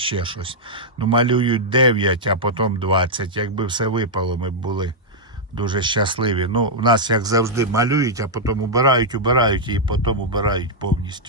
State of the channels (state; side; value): normal; both; correlation -0.06